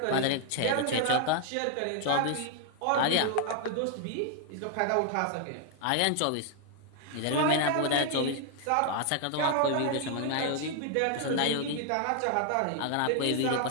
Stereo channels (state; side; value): different; both; correlation 0.00